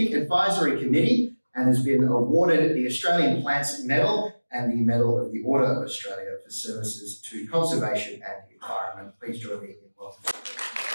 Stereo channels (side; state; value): both; inverted; correlation -1.00